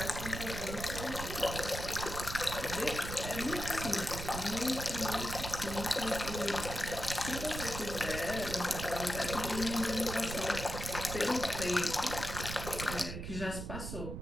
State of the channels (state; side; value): noise; right; rumble, 6 dB below the sound